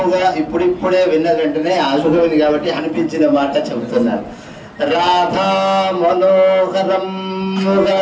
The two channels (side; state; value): both; identical; correlation 1.00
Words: ఇప్పుడిప్పుడే విన్న వెంటనే ఆశుభవిని కాబట్టి అనిపించిన మాట చెబుతున్నారు. రాధా మనోహరముగా,